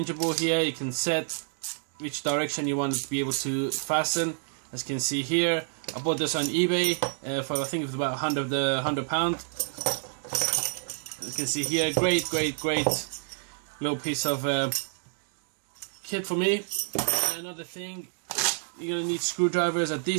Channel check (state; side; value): silent; left; digital silence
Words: here. You can set which direction you want to be able to fasten. As you can see here, I bought this on eBay for I think it was about £100. As you can see here, great little piece of kit for me. Another thing, you're gonna need screwdrivers.